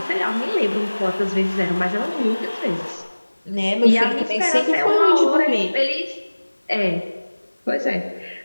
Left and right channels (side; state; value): both; inverted; correlation -1.00